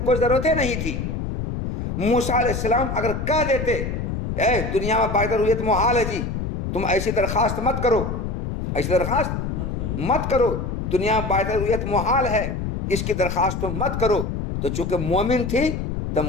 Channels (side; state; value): left; noise; rumble, 3 dB below the sound